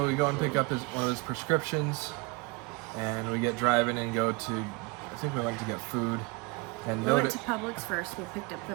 we go and pick up one of his prescriptions, and we get driving and go to, I think we went to get food. And we went to Publix first, we picked up the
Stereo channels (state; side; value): quieter; left; 27.3 dB